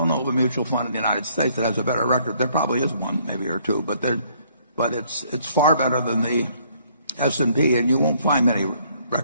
know of a mutual fund in the United States that has a better record. There probably is one, maybe or two, but it's far better than the S&P, and you won't find many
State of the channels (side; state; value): both; inverted; correlation -0.64